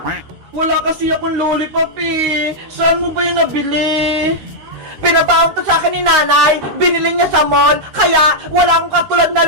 Wala kasi akong lollipop eh. Saan mo ba yung nabili? Pinabaon to sa akin ni nanay. Binili niya sa mall. Kaya wala akong katulad na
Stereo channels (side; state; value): left; late; 13 ms